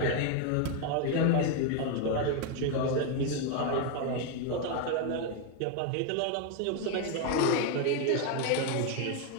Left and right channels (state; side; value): different; both; correlation 0.01